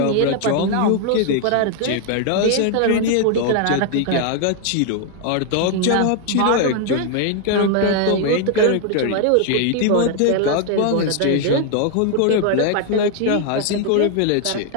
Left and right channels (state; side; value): different; both; correlation 0.00